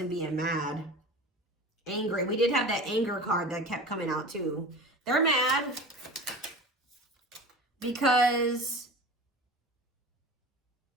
being mad, angry. We did have that anger card that kept coming out too. They're mad because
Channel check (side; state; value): both; normal; correlation 0.34